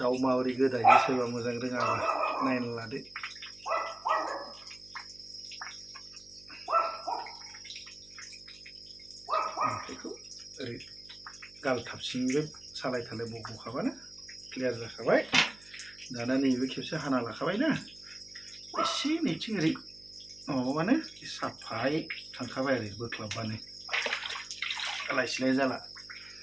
माबोरै गोदायो सोरबा मोजां रोङाबा नायना लादो बेखौ ओरै गालथाबसिंबो सालाय थालाय बख'खाबानो क्लियार जाखाबाय दाना नैबे खेबसे हाना लाखाबायना एसे नैथिं ओरै माबाबानो साफायै थांखाबाय आरो बोख्लाबबानो लायसिलाय जाला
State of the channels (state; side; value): noise; right; hum, 24 dB below the sound